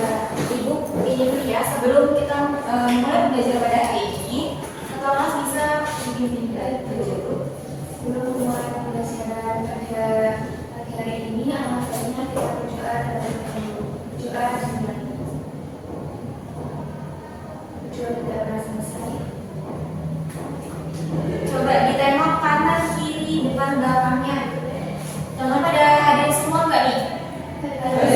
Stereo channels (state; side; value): identical; both; correlation 1.00